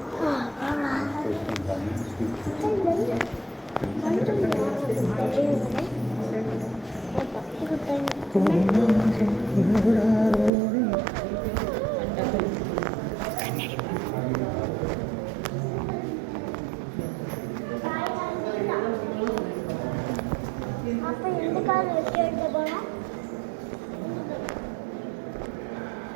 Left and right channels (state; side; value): drops out; left; at 10.5 s